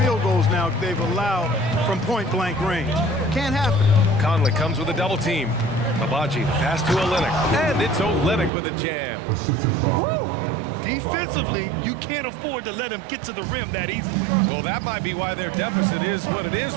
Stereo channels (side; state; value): left; drops out; at 8.5 s